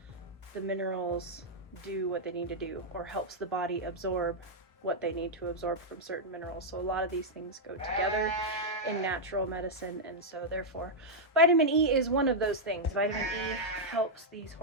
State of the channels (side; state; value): both; normal; correlation -0.04